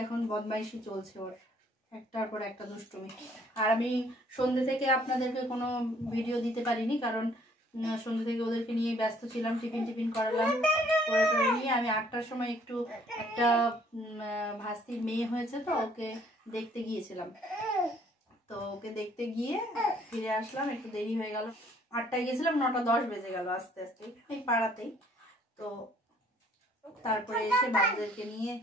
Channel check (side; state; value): both; normal; correlation 0.61